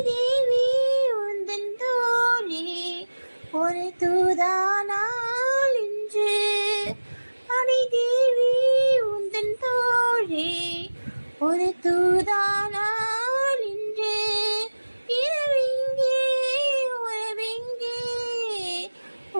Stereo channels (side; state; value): both; inverted; correlation -1.00